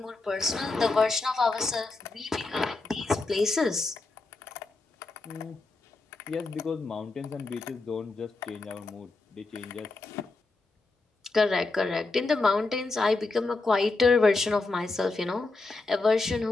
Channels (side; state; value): right; quieter; 3.5 dB